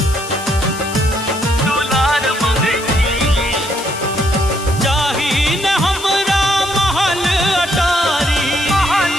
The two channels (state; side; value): noise; left; hiss, 13 dB below the sound